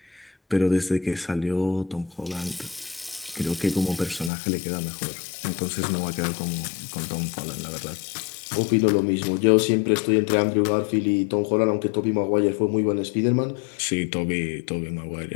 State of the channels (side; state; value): right; drops out; at 4.3 s